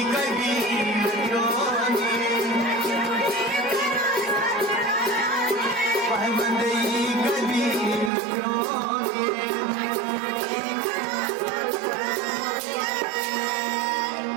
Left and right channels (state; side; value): drops out; left; at 8.1 s